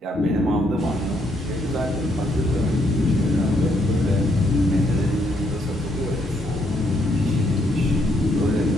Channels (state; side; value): normal; both; correlation 0.73